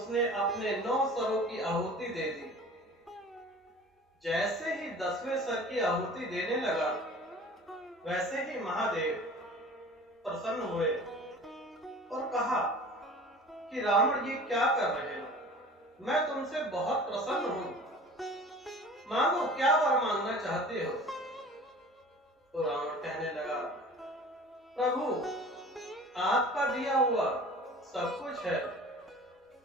अपने 9 सरों की आहुति दे दी। जैसे ही 10वें सर की आहुति देने लगा, वैसे ही महादेव प्रसन्न हुए और कहा कि रावण, ये क्या कर रहे हो? मैं तुमसे बहुत प्रसन्न हूं, मांगो, क्या वर मांगना चाहते हो? तो रावण कहने लगा, प्रभु, आपका दिया हुआ सब कुछ है,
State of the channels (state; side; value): normal; both; correlation 0.43